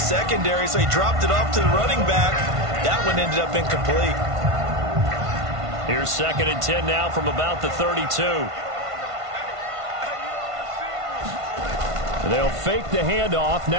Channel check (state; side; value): late; left; 1.5 ms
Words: so he dropped it off to the running back. That one ended up incomplete. Here's 2nd and 10 now from about the 32. They'll fake the handoff.